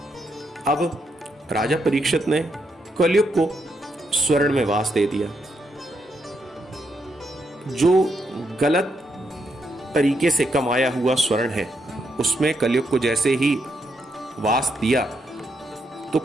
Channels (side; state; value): both; normal; correlation 0.79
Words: अब राजा परीक्षित ने कलयुग को स्वर्ण में वास दे दिया। जो गलत तरीके से कमाया हुआ स्वर्ण है उसमें कलयुग को जैसे ही वास दिया तो